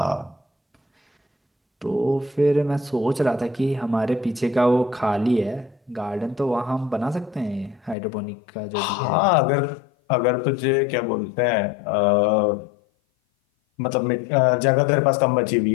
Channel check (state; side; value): drops out; right; at 8.0 s